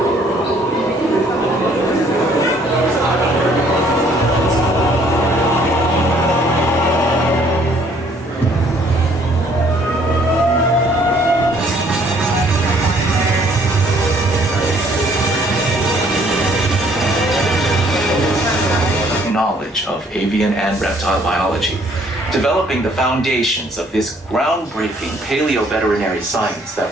Knowledge of avian and reptile biology, developing the foundations of this groundbreaking paleo-veterinary science that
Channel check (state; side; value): normal; both; correlation 0.62